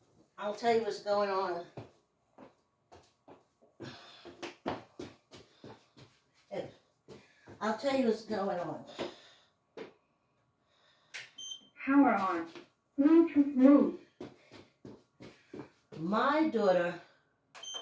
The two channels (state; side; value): identical; both; correlation 1.00